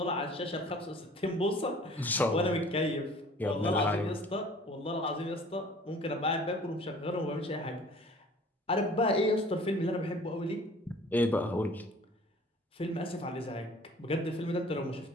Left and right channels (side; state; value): both; normal; correlation 0.49